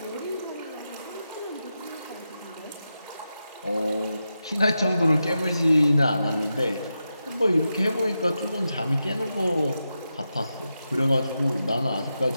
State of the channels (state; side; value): inverted; both; correlation -0.89